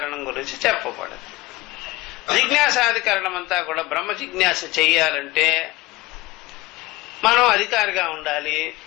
గురించి చెప్పబడింది. జిజ్ఞాసాధికరణం అంతా కూడా బ్రహ్మ జిజ్ఞాస చెయ్యాలంటే మనం అధికారిగా ఉండాలి.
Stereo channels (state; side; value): quieter; right; 20.2 dB